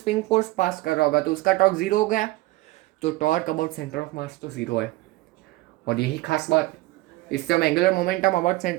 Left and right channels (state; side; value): quieter; left; 19.5 dB